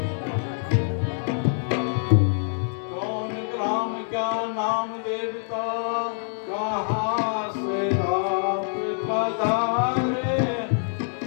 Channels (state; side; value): silent; right; 62 dB below the other